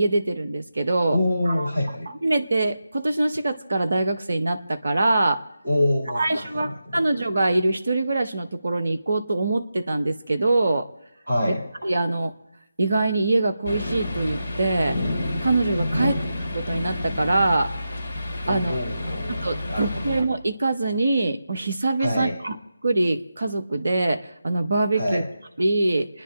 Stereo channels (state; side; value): inverted; both; correlation -0.89